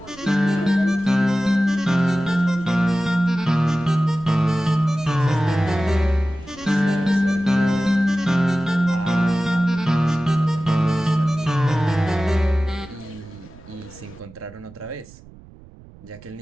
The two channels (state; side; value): noise; right; rumble, 21 dB below the sound